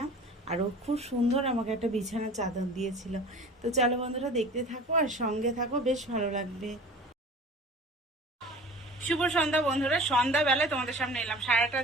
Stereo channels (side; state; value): both; normal; correlation 0.41